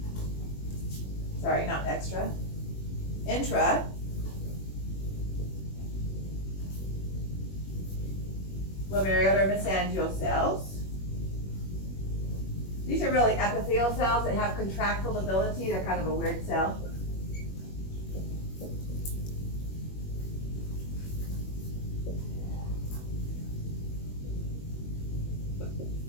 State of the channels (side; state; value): right; late; 21 ms